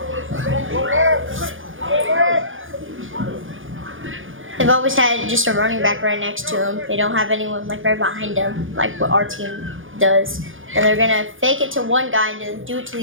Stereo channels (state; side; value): late; left; 0.58 ms